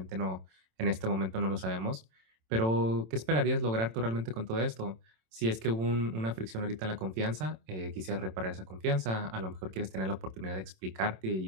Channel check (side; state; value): left; late; 27 ms